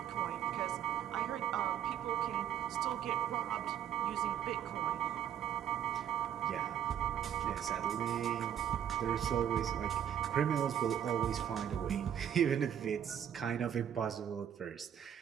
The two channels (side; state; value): left; quieter; 9.6 dB